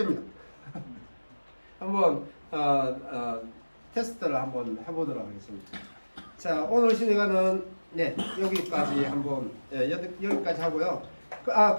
한번 테스트를 한번 해보도록 하겠습니다. 자, 오늘 시간은 네, 여기까지 한번 여기까지 하고요.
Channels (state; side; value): inverted; both; correlation -1.00